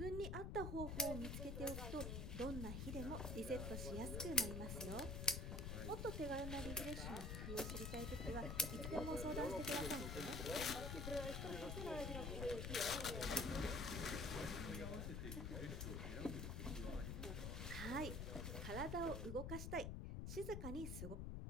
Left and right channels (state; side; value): noise; left; rumble, 2 dB below the sound